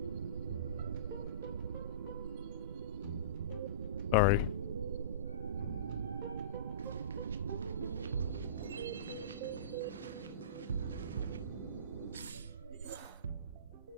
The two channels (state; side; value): inverted; both; correlation -0.33